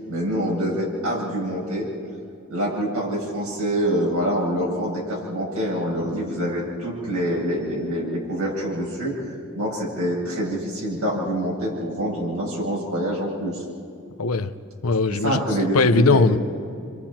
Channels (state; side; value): normal; both; correlation 0.26